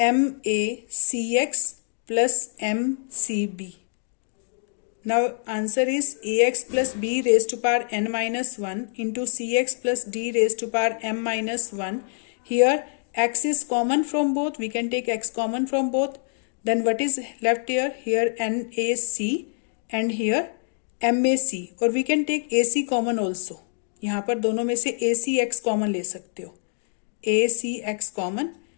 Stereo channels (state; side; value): silent; right; digital silence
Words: plus mcb. Now answer is ax plus b raised to power n minus 1 into cx plus d raised to power m minus 1. Here x is common from both, we can take x common from both. Then what is left here? Here NAC and here MAC, और we can take AC common also. यहाँ पर दोनों में से ACX common ले सकते हो. ACX common.